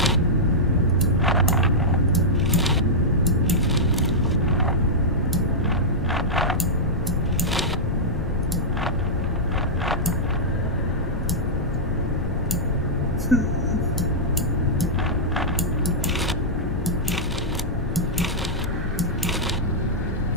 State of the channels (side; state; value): left; noise; rumble, 6 dB below the sound